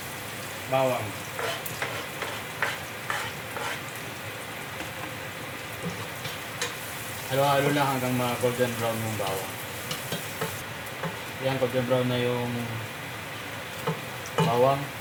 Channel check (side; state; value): both; identical; correlation 1.00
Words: Bawang. Halo-halo lang hanggang ma-golden brown yung bawang. Yan, golden brown na yung bawang.